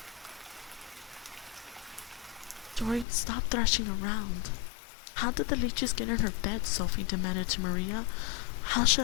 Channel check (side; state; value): right; drops out; at 3.1 s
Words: Joy, stop thrashing around. How did the leeches get in her bed? Sophie demanded to Maria. How